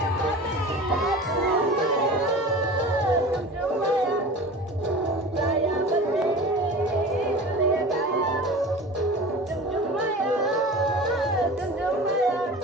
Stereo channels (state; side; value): normal; both; correlation 0.36